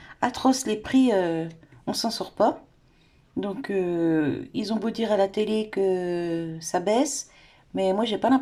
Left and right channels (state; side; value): identical; both; correlation 1.00